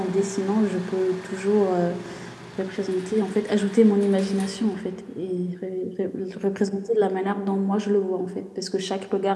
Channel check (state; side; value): identical; both; correlation 1.00